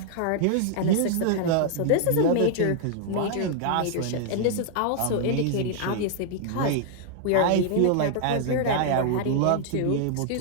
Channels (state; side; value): different; both; correlation 0.00